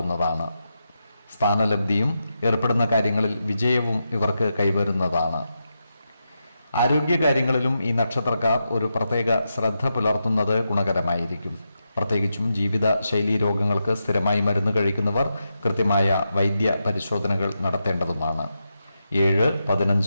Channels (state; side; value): inverted; both; correlation -0.87